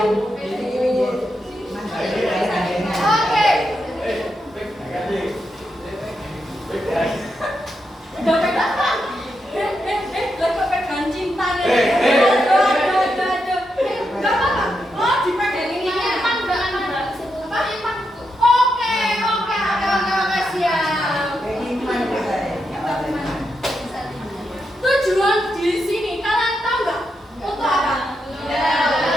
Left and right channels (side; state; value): both; normal; correlation 0.84